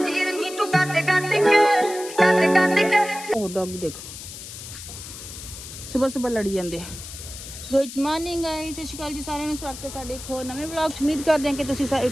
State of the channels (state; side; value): noise; left; hiss, 12 dB below the sound